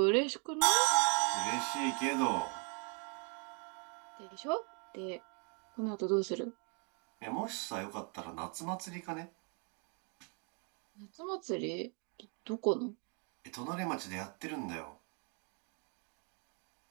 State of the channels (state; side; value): quieter; left; 36.9 dB